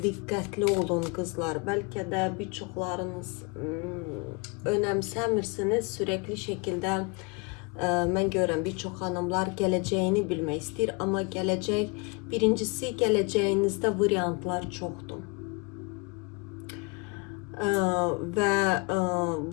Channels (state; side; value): quieter; right; 30.5 dB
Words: dikkatli olun kızlar. Belki de birçoklarınız önemsemirsiniz. Sürekli şekilde ben görürüm birçok hanımlar geleceğini bilmek ister ama gelecek birincisi geleceğinizde varyantlar çoktur. Ve